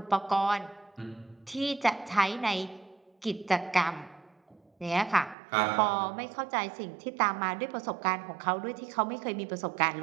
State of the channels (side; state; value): left; drops out; at 5.4 s